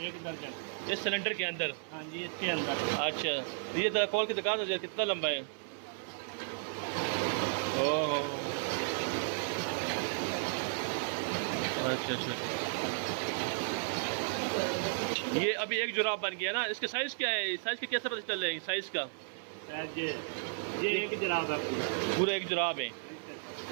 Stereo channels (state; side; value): silent; left; 55 dB below the other